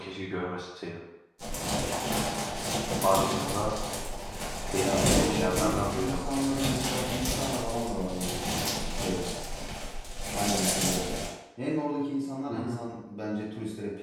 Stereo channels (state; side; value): identical; both; correlation 1.00